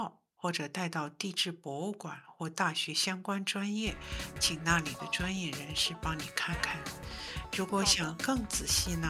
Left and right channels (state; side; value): identical; both; correlation 1.00